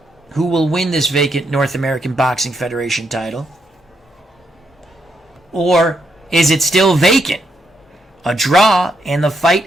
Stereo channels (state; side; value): normal; both; correlation 0.79